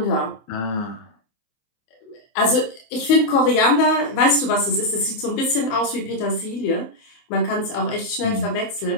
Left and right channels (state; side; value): late; right; 27 ms